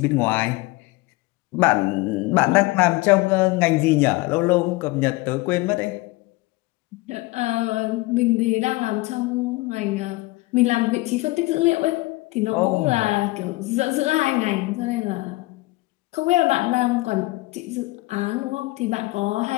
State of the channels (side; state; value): right; quieter; 21.2 dB